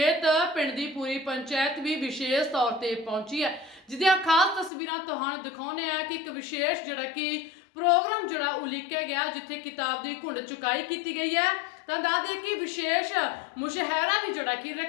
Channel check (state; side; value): drops out; right; at 4.7 s